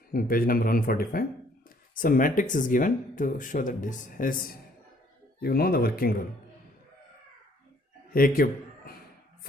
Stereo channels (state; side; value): normal; both; correlation 0.62